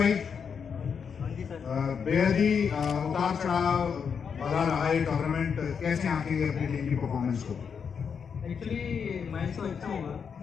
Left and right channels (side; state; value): right; quieter; 6.6 dB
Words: बेहद ही उतार चढ़ाव भरा रहा है टूर्नामेंट, कैसे आंकेंगे अपनी टीम की परफॉर्मेंस को? एक्चुअली मैच तो अच्छा हुआ